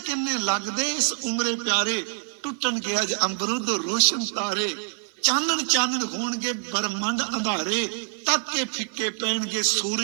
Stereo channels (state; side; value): silent; left; digital silence